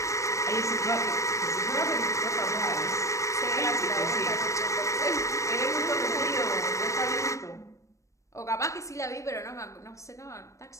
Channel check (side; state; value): right; late; 0.15 ms